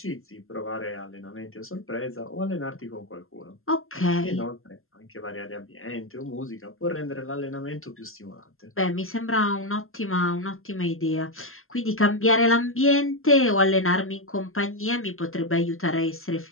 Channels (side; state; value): right; late; 0.61 ms